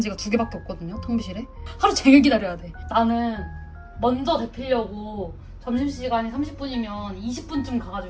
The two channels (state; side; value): identical; both; correlation 1.00